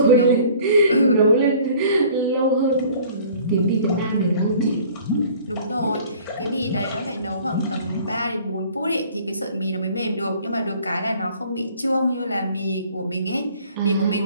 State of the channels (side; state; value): both; inverted; correlation -0.51